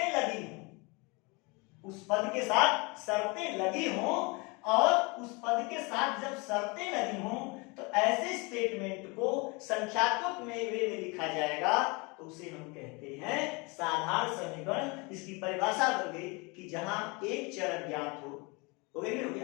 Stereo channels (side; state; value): right; quieter; 28.2 dB